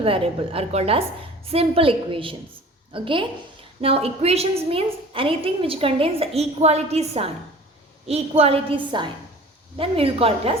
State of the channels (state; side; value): normal; both; correlation 0.44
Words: variable are called as simple equations. Okay, now equations means anything which contains the equality sign, then we will call it